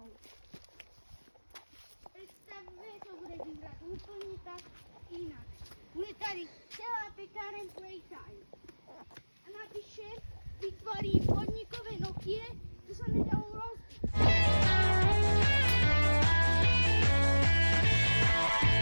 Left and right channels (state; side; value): inverted; both; correlation -1.00